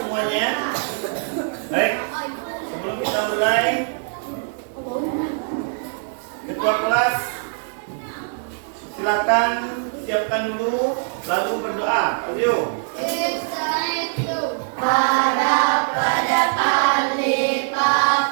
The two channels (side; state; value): left; silent; digital silence